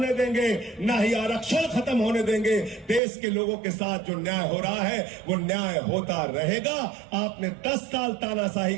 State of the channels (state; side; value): drops out; left; at 3.0 s